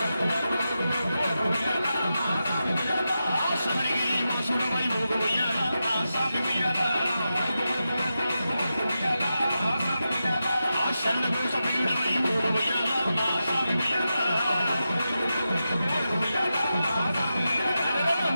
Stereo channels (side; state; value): both; inverted; correlation -0.90